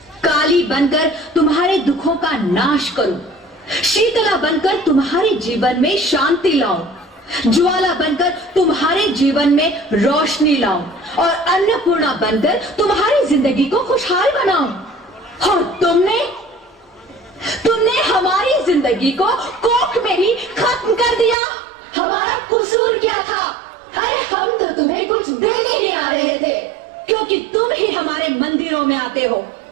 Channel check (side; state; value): left; drops out; at 21.4 s